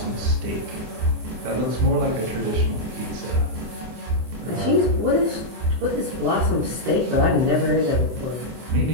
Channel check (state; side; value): late; left; 24 ms